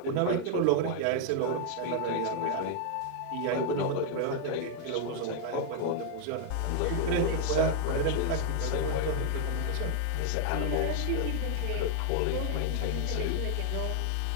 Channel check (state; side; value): different; both; correlation 0.00